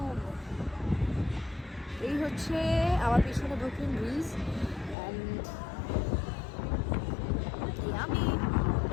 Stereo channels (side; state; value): right; drops out; at 5.0 s